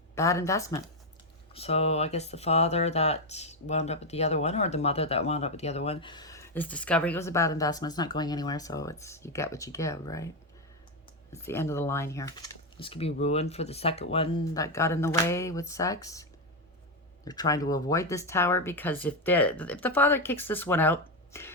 Bad investment. So I guess the father that wound up with the other one, or the mother that wound up with the other one, is discovering it was a bad investment. It's not going anywhere, so you get what you give, right? It's the end of the line here. This could be ruined for the second one that got in the way with sex. They're trying to avoid this tower because if the father kicks this one out,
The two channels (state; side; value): normal; both; correlation 0.06